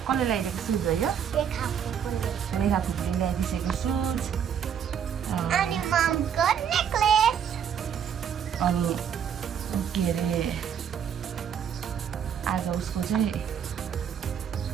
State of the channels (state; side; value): quieter; left; 8.3 dB